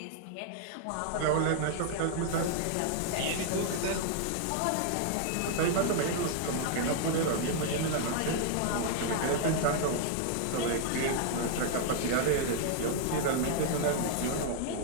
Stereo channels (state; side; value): different; both; correlation 0.00